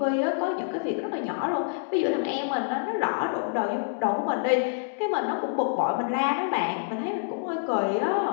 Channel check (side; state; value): right; silent; 60 dB below the other